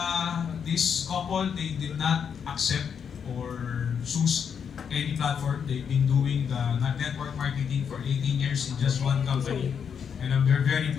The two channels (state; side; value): quieter; right; 7.2 dB